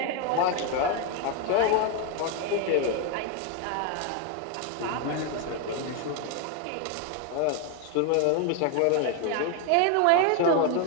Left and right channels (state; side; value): different; both; correlation 0.01